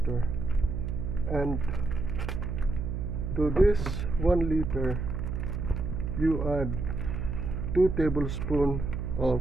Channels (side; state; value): right; noise; hum, 3 dB below the sound